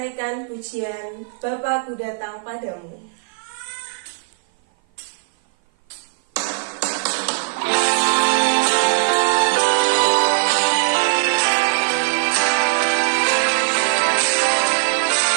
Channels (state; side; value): silent; left; 56 dB below the other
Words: pujian Bapa, Ku Datang Padamu.